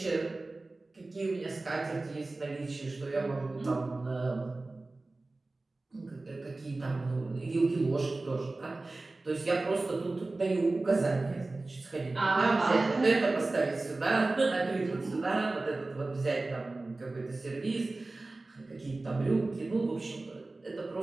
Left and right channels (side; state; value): left; quieter; 3.2 dB